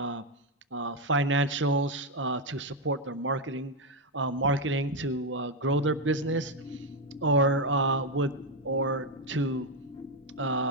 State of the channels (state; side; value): normal; both; correlation 0.05